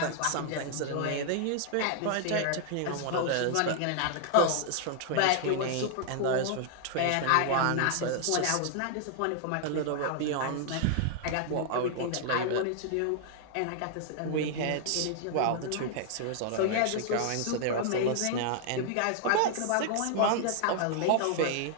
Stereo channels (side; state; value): both; different; correlation 0.00